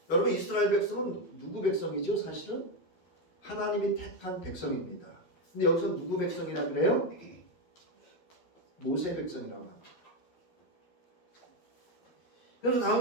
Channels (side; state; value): right; late; 12 ms